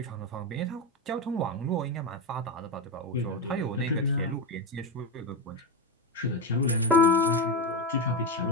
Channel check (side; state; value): both; normal; correlation 0.13